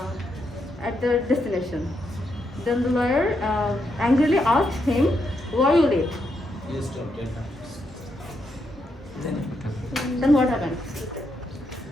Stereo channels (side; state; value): both; normal; correlation 0.80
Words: at the destination. Then the lawyer angrily asked him, "Why are you late?" Then what happened?